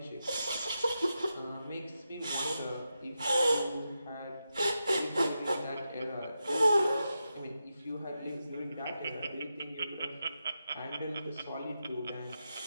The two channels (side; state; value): both; inverted; correlation -0.88